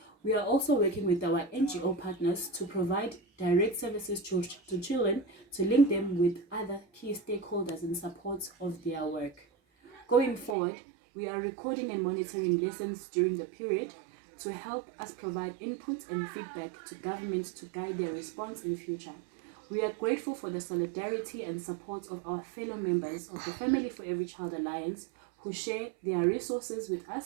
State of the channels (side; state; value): left; drops out; at 10.6 s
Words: We are also working with our NGO partners to provide direct services to children to link them with other key stakeholders in support of their work. Going forward, we are recording and monitoring lessons during the period to help us provide input and feedback to government to guide their response in future. We are grateful for the solidarity and support of our fellow members of the Family for Every Child Alliance who share their resources with